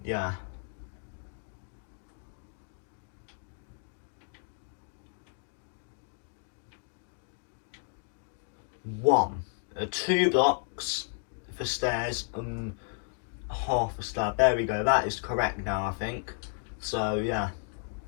yeah. One. 2 blocks for stairs and half a slab. There we go, that is correct now, I think. So yeah.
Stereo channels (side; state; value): right; silent; 56 dB below the other